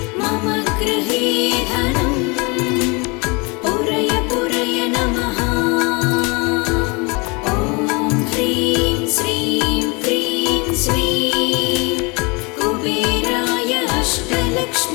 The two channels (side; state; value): right; quieter; 28.8 dB